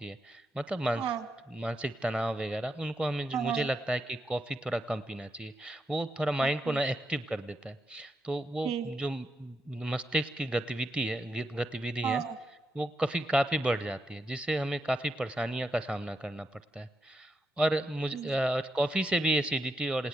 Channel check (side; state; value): both; normal; correlation 0.83